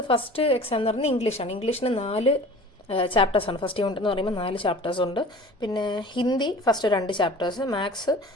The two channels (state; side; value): normal; both; correlation 0.42